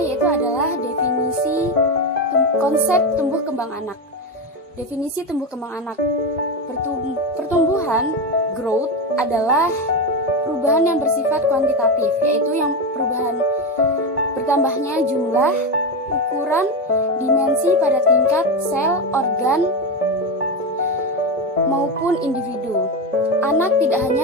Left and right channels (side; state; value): both; normal; correlation 0.15